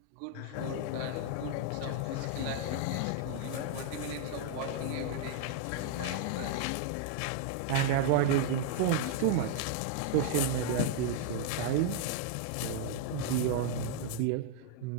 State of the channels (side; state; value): both; different; correlation 0.00